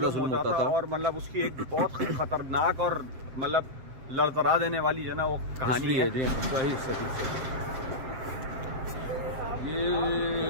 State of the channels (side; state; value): left; late; 7.6 ms